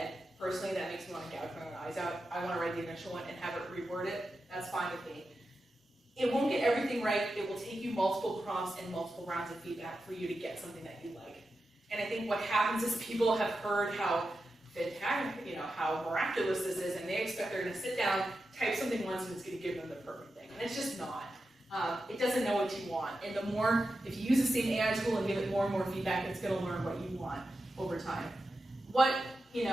Personally, that makes me want to gouge my own eyes out. I want to write the initial one and have it reword it. That's fine with me. It won't get everything right. It will take you multiple prompts and multiple rounds of feedback for you to get something that you like. And I think what happens is people have heard how fantastic, you know, how miraculous this is, and they expect they're going to sit down, type something once, and it's going to give them the perfect thing. And it's just not. It doesn't know what you want. And the more, if you use the same AI tool and give it more and more feedback, it's going to learn what you want over time. What you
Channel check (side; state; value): both; normal; correlation 0.90